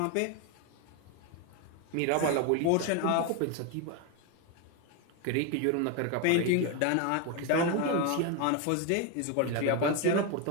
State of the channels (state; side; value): different; both; correlation 0.02